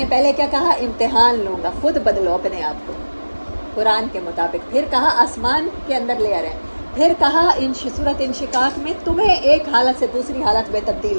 پہلے کیا کہا؟ امتحان لوں گا، خود بدلو اپنے آپ کو قرآن کے مطابق۔ پھر کہا آسمان کے اندر لے آ رہے ہیں۔ پھر کہا سورۃ انشقاق میں تمہیں ایک حالت سے دوسری حالت میں تبدیل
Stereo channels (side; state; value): both; inverted; correlation -1.00